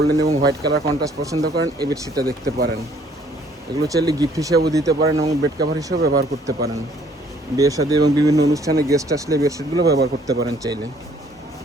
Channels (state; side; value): normal; both; correlation 0.61